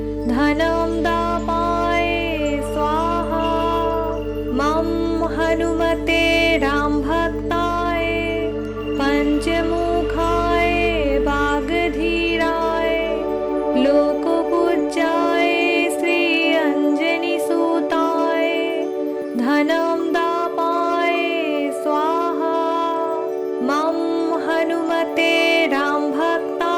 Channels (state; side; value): identical; both; correlation 1.00